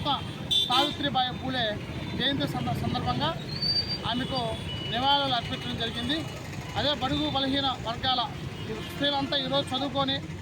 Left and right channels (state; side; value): identical; both; correlation 1.00